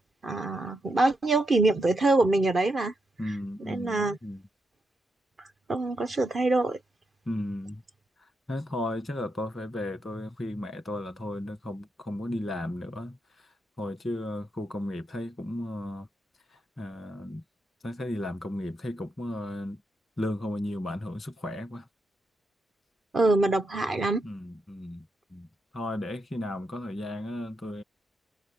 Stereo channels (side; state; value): both; normal; correlation 0.83